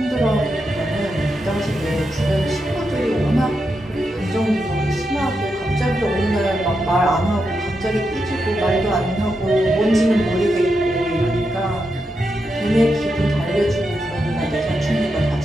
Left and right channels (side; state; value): both; normal; correlation 0.85